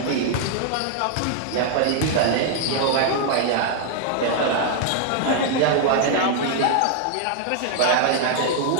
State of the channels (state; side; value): different; both; correlation 0.00